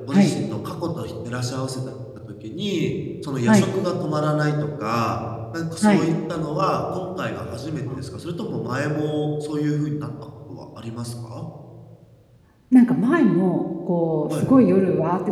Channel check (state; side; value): identical; both; correlation 1.00